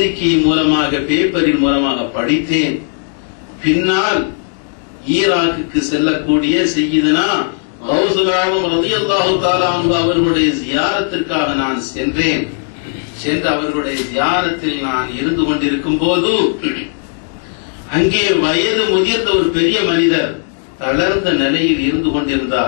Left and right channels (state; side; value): silent; right; 63 dB below the other